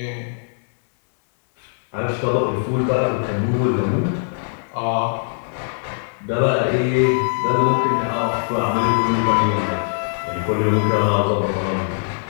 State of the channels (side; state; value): right; silent; digital silence